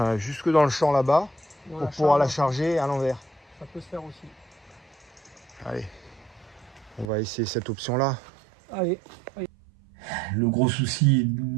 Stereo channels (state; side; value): drops out; left; at 7.1 s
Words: jusque dans le champ là-bas pour pouvoir la charger à l'envers. Ça peut se faire aussi. Allez, on va essayer cette option-là. Allez. Le gros souci